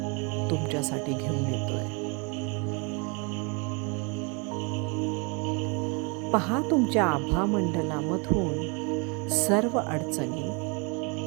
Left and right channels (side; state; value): left; quieter; 32.1 dB